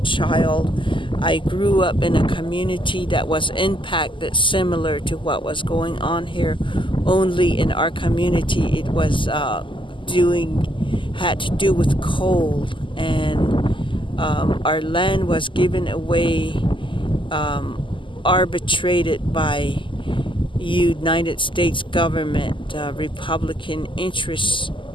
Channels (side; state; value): right; late; 0.25 ms